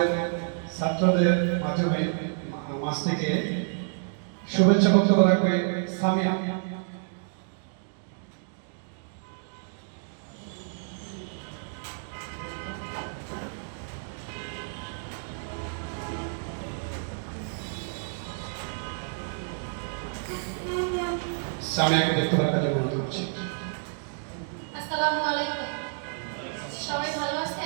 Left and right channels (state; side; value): silent; left; digital silence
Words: ছাত্রদের মাধ্যমে মাঝ থেকে শুভেচ্ছা বক্তব্য রাখবে সামিয়া। সামিয়াকে বক্তব্য রাখার জন্য অনুরোধ করছি। আসসালামু আলাইকুম, সবাই ভালো